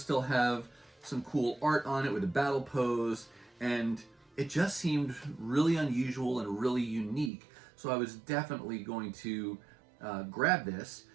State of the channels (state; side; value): drops out; left; at 7.3 s